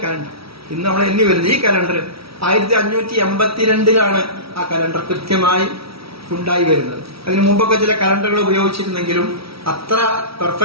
കലണ്ടർ. ഇന്ന് നമ്മൾ എണ്ണി വരുന്നത് ഈ കലണ്ടർ 1582 ആ കലണ്ടർ കൃത്യമായി ഉണ്ടായി വരുന്നത്. അതിനു മുമ്പൊക്കെ ചില കലണ്ടറുകൾ ഉപയോഗിച്ചിരുന്നെങ്കിലും അത്ര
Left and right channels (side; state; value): left; late; 0.76 ms